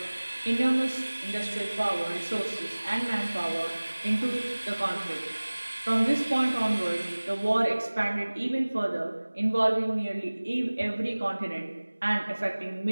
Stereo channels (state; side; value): inverted; both; correlation -1.00